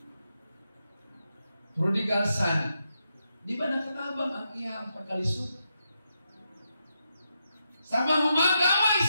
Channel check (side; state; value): both; inverted; correlation -0.84